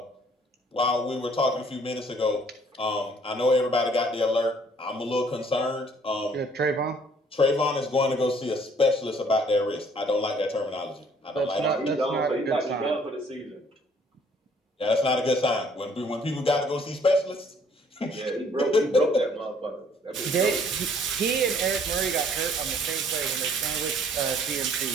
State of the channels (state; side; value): normal; both; correlation 0.60